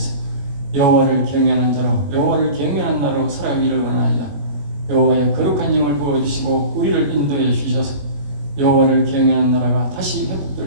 여호와를 경외하는 자로 여호와를 경외하는 나라로 살아가기를 원하나이다. 여호와의 거룩한 영을 부어주시고 우리를 인도해 주셔서 여호와를 경외하는 나라가 다시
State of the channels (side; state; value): left; late; 21 ms